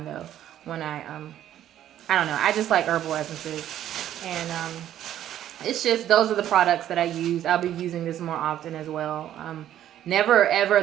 though. When I don't know. I just like herbal essences, and it's just those are the products that I use. I'll be using this more often as well. Never ever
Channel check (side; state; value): left; quieter; 11.6 dB